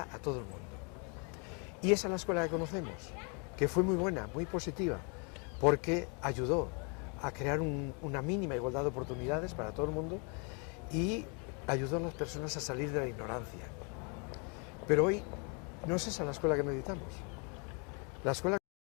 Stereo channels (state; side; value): quieter; right; 35.3 dB